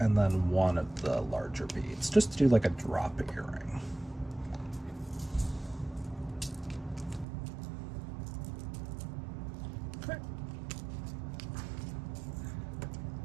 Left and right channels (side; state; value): left; drops out; at 7.2 s